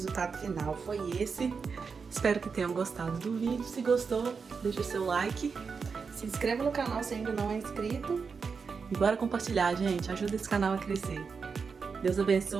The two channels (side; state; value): left; quieter; 5.4 dB